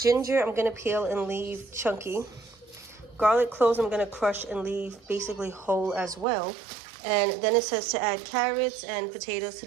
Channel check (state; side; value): drops out; left; at 6.2 s